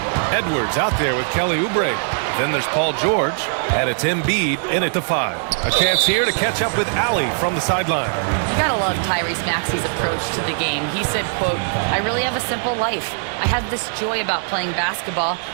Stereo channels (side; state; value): left; silent; digital silence